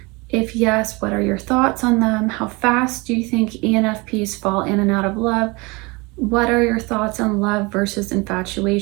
If yes, what are your thoughts on them? How fast do you think ENFPs fall in and out of love? What are your thoughts on love versus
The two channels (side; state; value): left; quieter; 26.0 dB